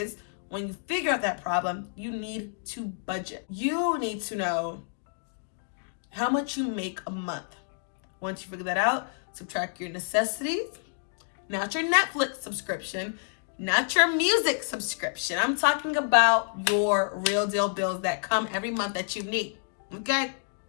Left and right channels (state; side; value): silent; right; digital silence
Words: when you figure out that problem, you need to budget. You need to know how much you make a month. Once you figure that out, subtract your necessities, not your Netflix subscription, not your music subscription. I'm talking about your real deal bills that come every month that you need. Okay?